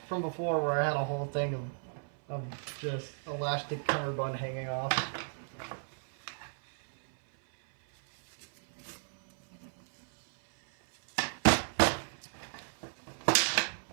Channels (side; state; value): left; silent; 55 dB below the other